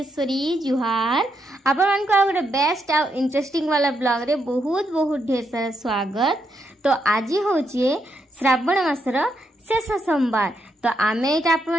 जुहार आपण को गोटे बेस्ट आ इंटरेस्टिंग वाला ब्लॉग रे बहुत बहुत ढेर सारा स्वागत। तो आज हूँ श्रावण मासर शेष सोमवार। तो आमे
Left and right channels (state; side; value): normal; both; correlation 0.80